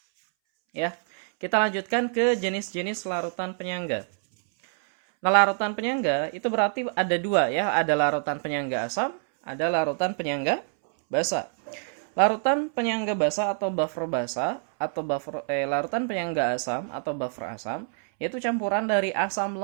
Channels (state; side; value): silent; left; 61 dB below the other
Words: ya. Kita lanjutkan ke jenis-jenis larutan penyangga. Nah, larutan penyangga itu berarti ada dua ya. Ada larutan penyangga asam, ada larutan penyangga basa. Larutan penyangga basa atau buffer basa atau larutan penyangga asam atau buffer asam yaitu campuran dari asam